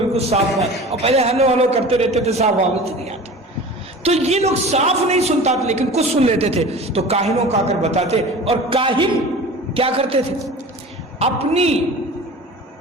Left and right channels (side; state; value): both; normal; correlation 0.38